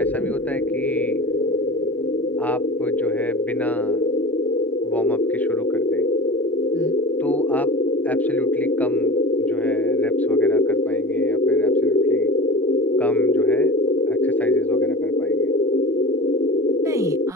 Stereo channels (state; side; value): normal; both; correlation 0.33